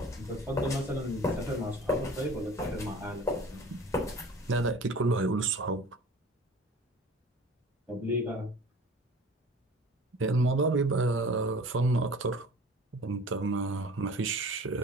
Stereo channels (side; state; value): both; normal; correlation 0.43